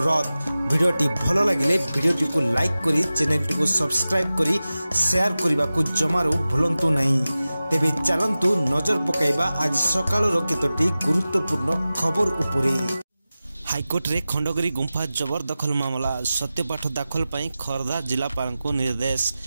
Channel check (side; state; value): both; inverted; correlation -0.95